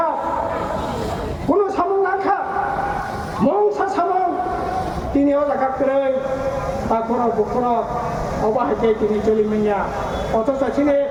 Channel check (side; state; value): both; identical; correlation 1.00